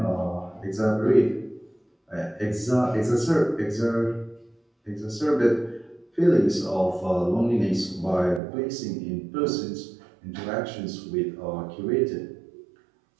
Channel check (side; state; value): left; drops out; at 8.4 s